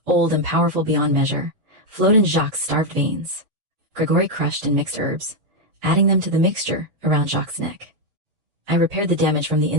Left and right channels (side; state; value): left; late; 6.9 ms